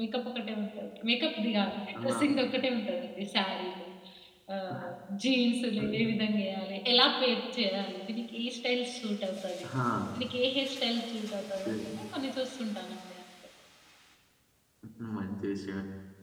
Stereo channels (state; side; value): identical; both; correlation 1.00